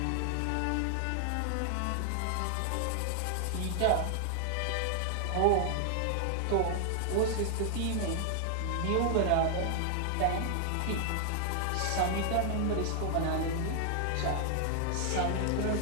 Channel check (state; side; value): different; both; correlation 0.00